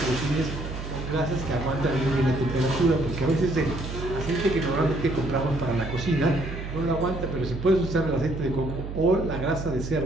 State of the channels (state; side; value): noise; right; hum, 7 dB below the sound